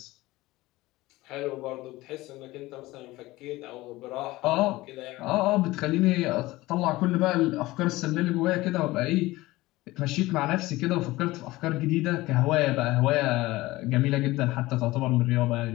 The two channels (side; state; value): right; quieter; 19.0 dB